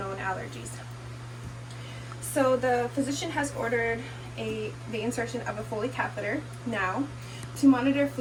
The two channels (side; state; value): both; identical; correlation 1.00